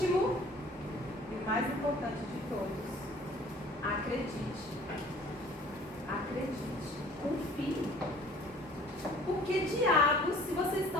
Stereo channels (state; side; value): normal; both; correlation 0.51